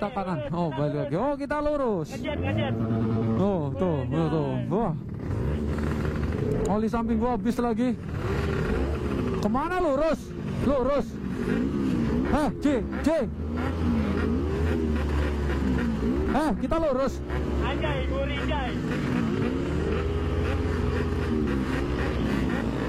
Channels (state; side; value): identical; both; correlation 1.00